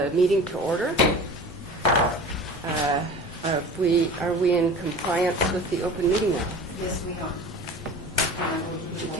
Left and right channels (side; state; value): both; normal; correlation 0.38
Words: meeting to order. Are we in compliance with the open meeting law? Yes, we are. Would you